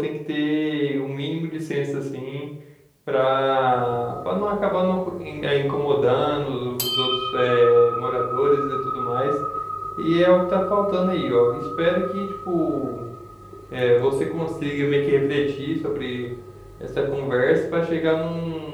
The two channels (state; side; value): identical; both; correlation 1.00